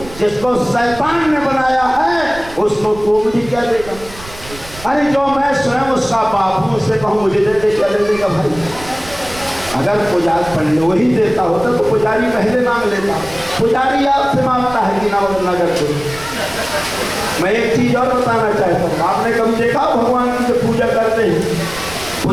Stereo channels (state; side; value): noise; right; rumble, 17 dB below the sound